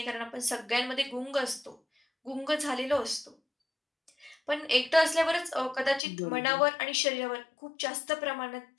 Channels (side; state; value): right; drops out; at 6.0 s